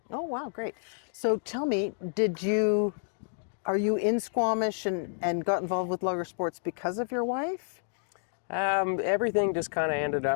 Oh, wow, great. So tell me, are you in Squamish and got involved with logger sports because of your wife? Everything just kind of ended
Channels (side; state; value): right; silent; digital silence